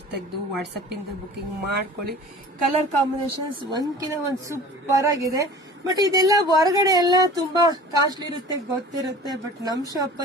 ತೆಗೆದು ವಾಟ್ಸಪ್ ಇಂದ ಬುಕಿಂಗ್ ಮಾಡ್ಕೊಳ್ಳಿ. ಕಲರ್ ಕಾಂಬಿನೇಷನ್ಸ್ ಒಂದ್ಕಿನ ಒಂದು ಸೂಪರ್ ಆಗಿದೆ. ಬಟ್ ಇದೆಲ್ಲ ಹೊರಗಡೆ ಎಲ್ಲ ತುಂಬಾ ಕಾಸ್ಟ್ಲಿ ಇರುತ್ತೆ, ಗೊತ್ತಿರುತ್ತೆ. ಬಟ್ ನಮ್ ಶಾಪ್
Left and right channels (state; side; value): normal; both; correlation 0.42